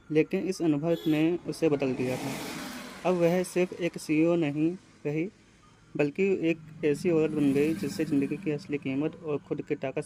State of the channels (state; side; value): identical; both; correlation 1.00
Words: लेकिन इस अनुभव ने उसे बदल दिया था। अब वह सिर्फ एक सीईओ नहीं रही, बल्कि एक ऐसी औरत बन गई जिससे ज़िंदगी की असली कीमत और खुद की ताकत